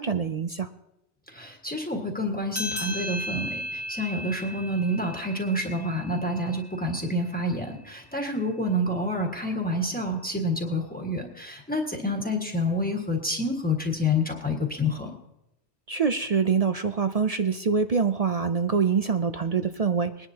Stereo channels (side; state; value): both; normal; correlation -0.03